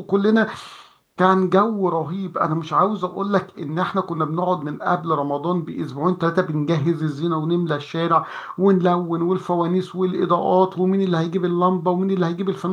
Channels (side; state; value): both; identical; correlation 1.00